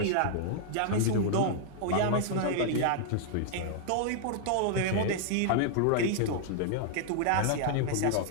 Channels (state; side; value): different; both; correlation -0.01